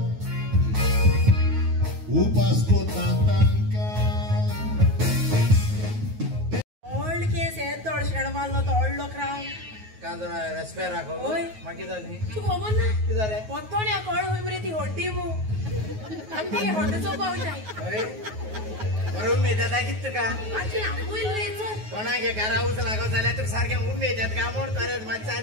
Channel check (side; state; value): left; late; 9.4 ms